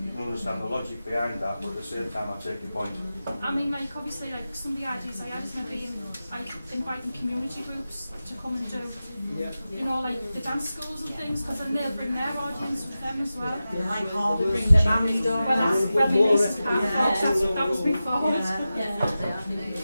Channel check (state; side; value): inverted; both; correlation -0.93